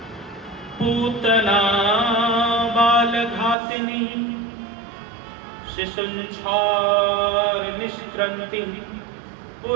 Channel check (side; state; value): left; drops out; at 3.6 s